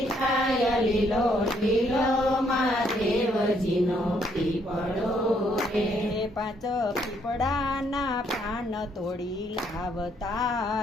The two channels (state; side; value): normal; both; correlation 0.70